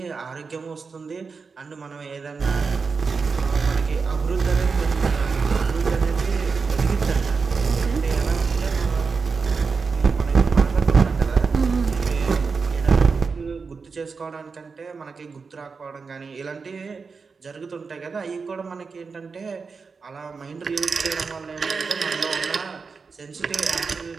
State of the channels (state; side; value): quieter; left; 4.9 dB